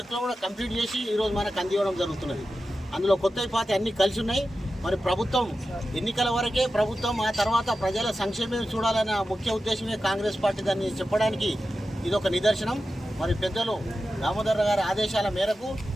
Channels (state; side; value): normal; both; correlation 0.92